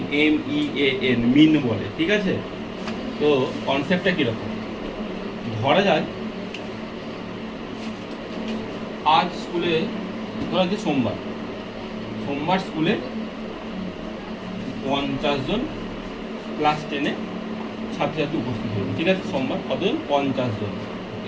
MEAN, মিন বলে, ঠিক আছে? তো কনসেপ্টটা কিরকম? ধরা যায় আজ স্কুলে, ধরা যে সোমবার স্কুলে 50 জন ক্লাস 10-এ ছাত্রছাত্রী উপস্থিত হবে, ঠিক আছে? সোমবার কতজন? 50 জন।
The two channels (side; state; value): both; identical; correlation 1.00